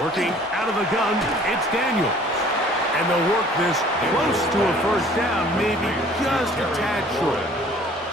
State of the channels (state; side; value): normal; both; correlation 0.53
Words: out of the gun, it's Daniels. And they'll work this close to a first down, maybe just a tad short.